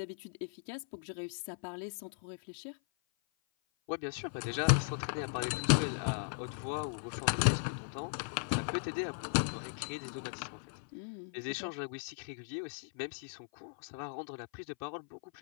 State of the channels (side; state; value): right; silent; 53 dB below the other